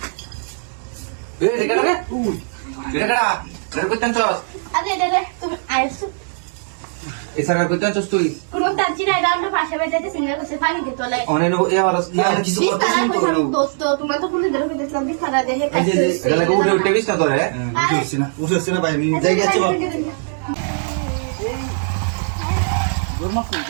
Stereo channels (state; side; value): silent; left; 66 dB below the other